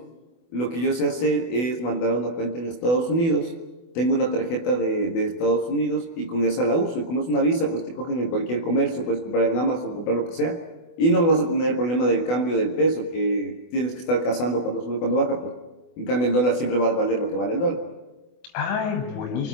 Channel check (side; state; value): right; late; 24 ms